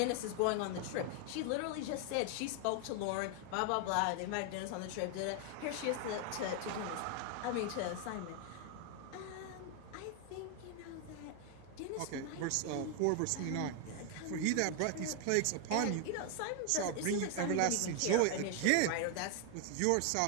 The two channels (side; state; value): both; different; correlation 0.01